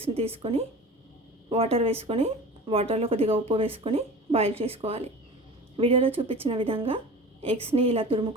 తీసుకొని వాటర్ వేసుకొని వాటర్లో కొద్దిగా ఉప్పు వేసుకొని బాయిల్ చేసుకోవాలి. వీడియోలో చూపించిన విధంగా ఎగ్స్ని ఇలా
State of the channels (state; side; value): normal; both; correlation 0.37